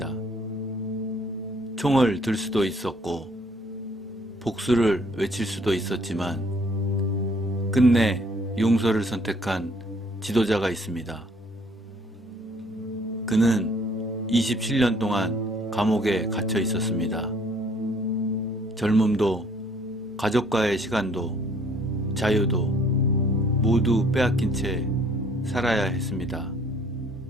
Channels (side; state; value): both; normal; correlation 0.60